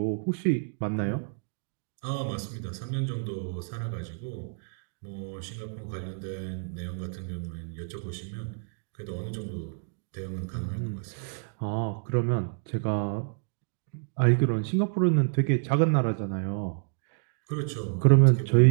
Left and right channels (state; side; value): silent; left; digital silence